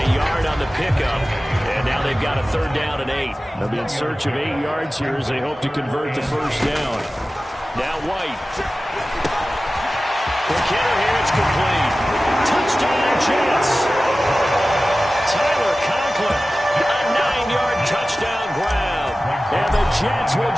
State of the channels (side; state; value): both; normal; correlation 0.96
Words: yard on the pickup. And now they've got a third down and 8. They'll be in search of 8 yards here as they hope to convert the first down. Now White. The kicker here, it's complete. Touchdown Jets. Tyler Conklin, a 9-yard touchdown grab. And the Jets will